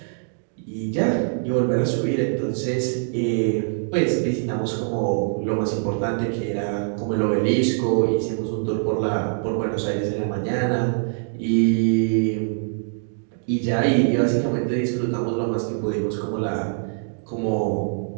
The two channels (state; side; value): silent; left; digital silence